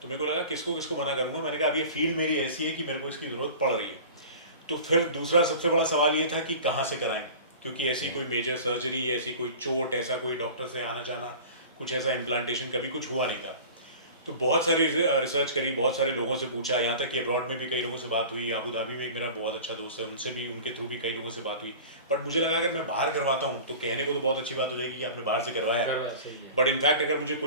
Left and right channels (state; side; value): inverted; both; correlation -0.38